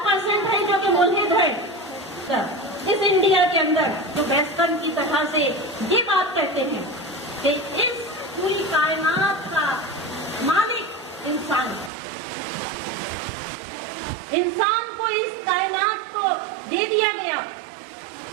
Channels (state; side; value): drops out; left; at 11.9 s